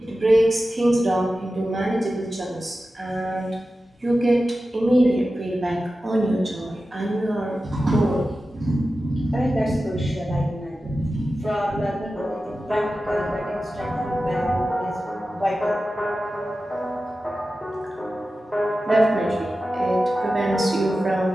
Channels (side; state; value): both; normal; correlation 0.94